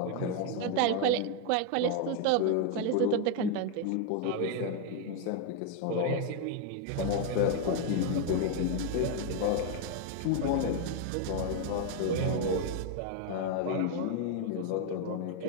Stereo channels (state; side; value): different; both; correlation 0.01